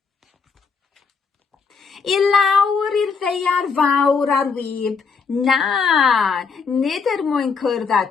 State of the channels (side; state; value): right; quieter; 5.3 dB